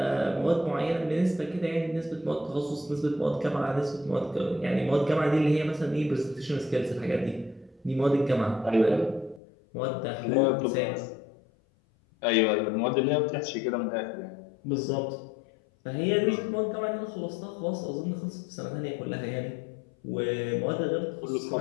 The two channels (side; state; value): right; drops out; at 9.4 s